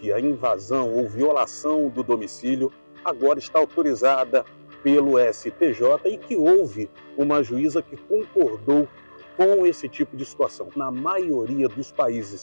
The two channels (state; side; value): inverted; both; correlation -1.00